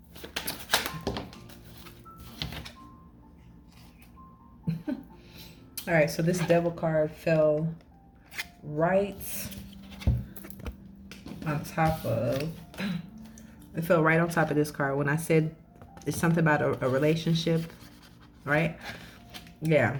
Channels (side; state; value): both; identical; correlation 1.00